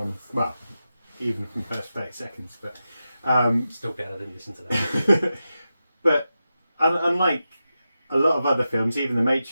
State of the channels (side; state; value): both; inverted; correlation -0.91